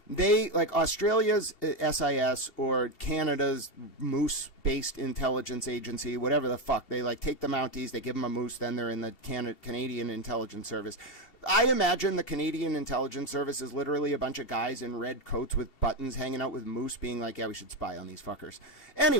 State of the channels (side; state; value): right; late; 2.7 ms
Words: they, like Australia's SIS or Canada's Moose-based intelligence agency, whatever the fuck, they like take the Mounties, they give them a moose, then they're in the Canadian Intelligence Service. I imagine the Canadian Intelligence Service is literally a bunch of guys in red coats with buttons hanging out with moose being like, yeah, we should spy on these fuckers.